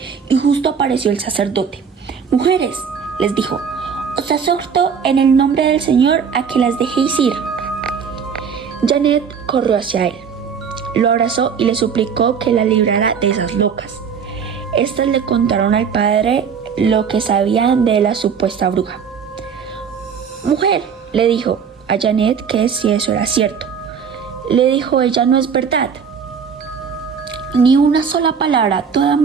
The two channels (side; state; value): left; quieter; 6.7 dB